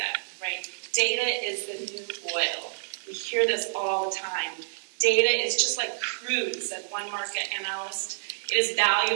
right? Data is the new oil. We hear this all the time. Data is just like crude, said one market analyst. It is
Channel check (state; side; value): silent; left; digital silence